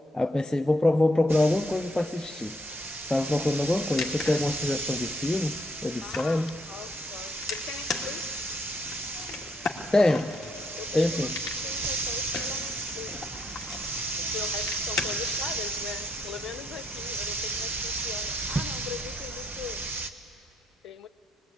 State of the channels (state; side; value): normal; both; correlation 0.74